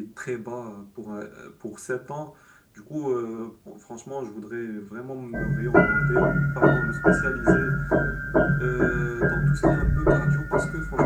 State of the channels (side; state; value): both; identical; correlation 1.00